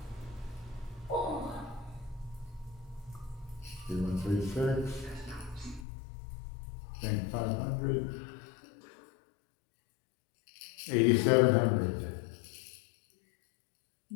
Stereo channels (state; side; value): drops out; right; at 5.9 s